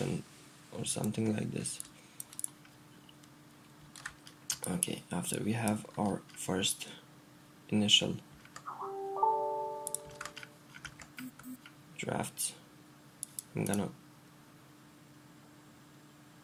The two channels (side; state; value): both; identical; correlation 1.00